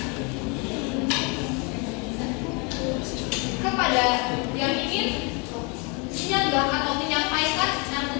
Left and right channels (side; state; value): right; quieter; 32.3 dB